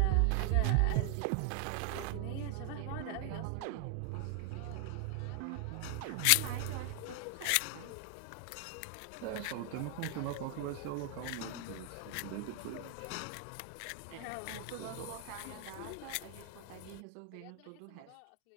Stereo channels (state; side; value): different; both; correlation 0.00